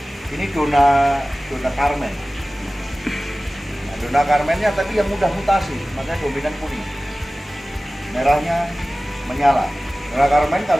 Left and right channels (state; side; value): normal; both; correlation 0.97